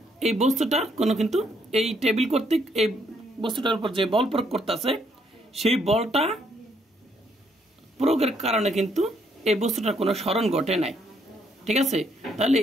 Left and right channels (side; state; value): both; normal; correlation 0.71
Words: এই বস্তুটার কোনো কিন্তু এই টেবিল কর্তৃক এই বস্তুটার উপর যে বল প্রয়োগ করতেছে, সেই বলটা প্রয়োগের কারণে কিন্তু এই বস্তুটার কোনো সরণ ঘটে নাই, ঠিক আছে। তাহলে